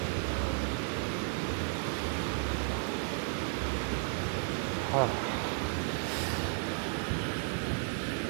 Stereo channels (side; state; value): left; silent; 55 dB below the other